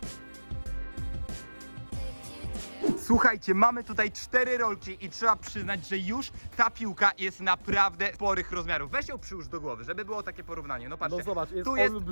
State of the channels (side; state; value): both; inverted; correlation -1.00